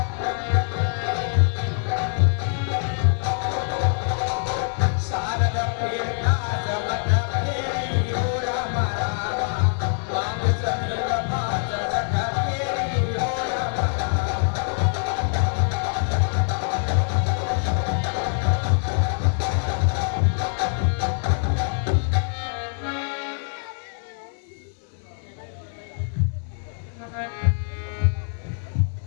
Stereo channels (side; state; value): right; silent; 62 dB below the other